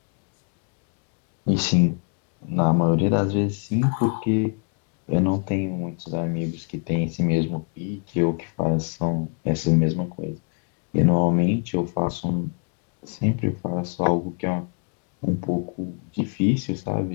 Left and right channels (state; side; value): quieter; right; 38.6 dB